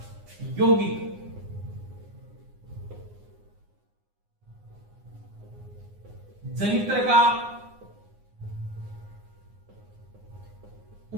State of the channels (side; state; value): left; late; 9.7 ms